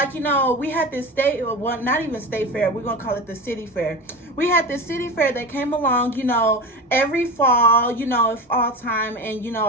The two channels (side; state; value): both; normal; correlation 0.27